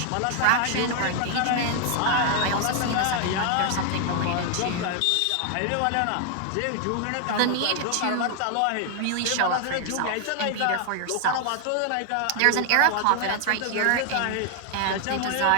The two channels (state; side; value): different; both; correlation 0.00